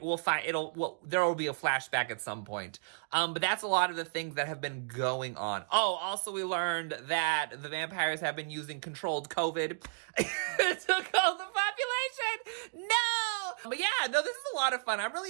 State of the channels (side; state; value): left; silent; digital silence